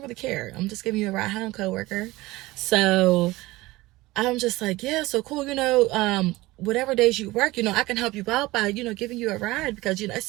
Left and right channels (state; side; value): quieter; left; 19.6 dB